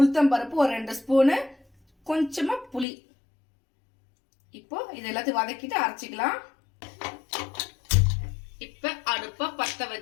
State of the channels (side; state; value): right; drops out; at 2.9 s